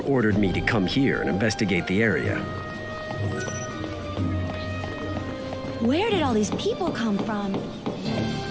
ordered me to come here and investigate the area. Where did all these people come from?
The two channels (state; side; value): identical; both; correlation 1.00